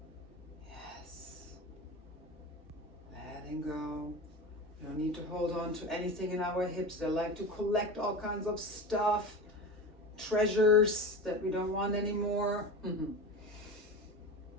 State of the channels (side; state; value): both; normal; correlation 0.28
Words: letting go. You don't need to hold on to anything in our hips. They like to collect all kinds of stuff, treasures that we don't want anymore.